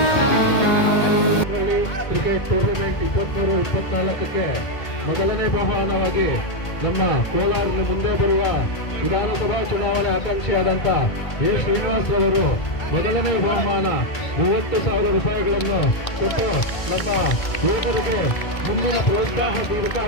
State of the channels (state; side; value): late; right; 1.8 ms